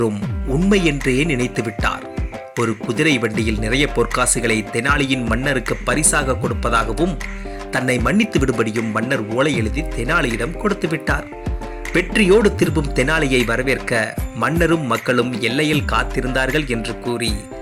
உண்மை என்றே நினைத்து விட்டார். ஒரு குதிரை வண்டியில் நிறைய பொற்காசுகளை தெனாலியின் மன்னருக்கு பரிசாக கொடுப்பதாகவும் தன்னை மன்னித்து விடும்படியும் மன்னர் ஓலை எழுதி தெனாலியிடம் கொடுத்து விட்டார். வெற்றியோடு திரும்பும் தெனாலியை வரவேற்க மன்னரும் மக்களும் எல்லையில் காத்திருந்தார்கள் என்று கூறி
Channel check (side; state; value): both; identical; correlation 1.00